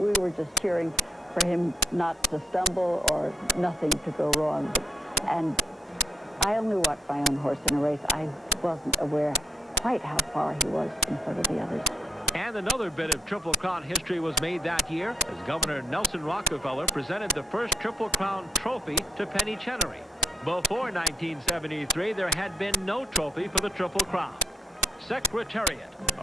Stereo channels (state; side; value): normal; both; correlation 0.76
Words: were just cheering for him not to stumble or nothing to go wrong. And I only watched my own horse in a race. I wasn't aware quite how far he was in front of the others. And another bit of Triple Crown history was made that year as Governor Nelson Rockefeller presented the first Triple Crown trophy to Penny Chenery. Before 1973, there had been no trophy for the Triple Crown. Secretariat,